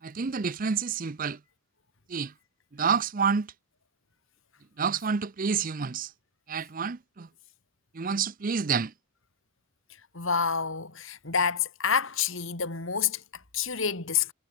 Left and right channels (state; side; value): normal; both; correlation -0.06